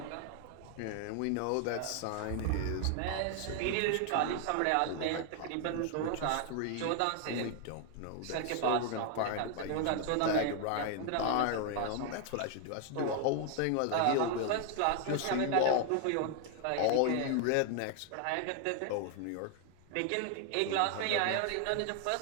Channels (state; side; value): different; both; correlation 0.00